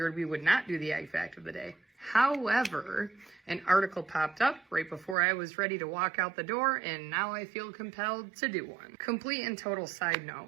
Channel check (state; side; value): drops out; left; at 5.2 s